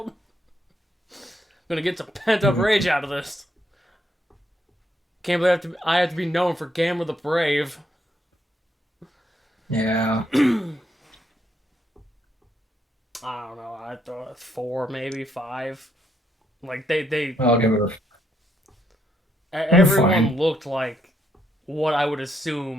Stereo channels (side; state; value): both; normal; correlation 0.75